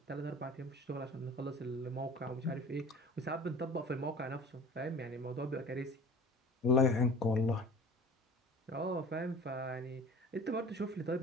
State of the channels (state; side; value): normal; both; correlation 0.42